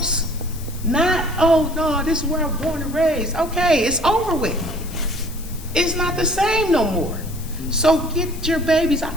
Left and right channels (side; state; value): left; noise; hiss, 17 dB below the sound